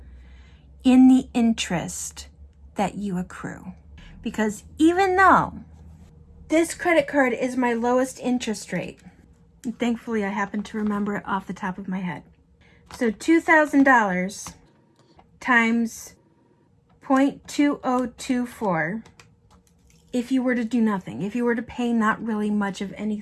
in the interest that you accrue. Because even though this credit card is my lowest interest rate, and thankfully I happen to remember it off the top of my head. So $2,000 times 0.2024, if you were to do nothing, if you were to pay not really much of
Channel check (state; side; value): identical; both; correlation 1.00